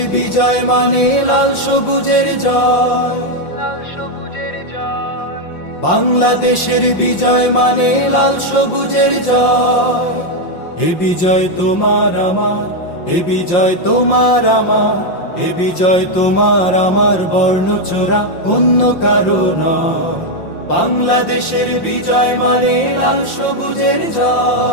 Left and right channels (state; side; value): late; right; 5.7 ms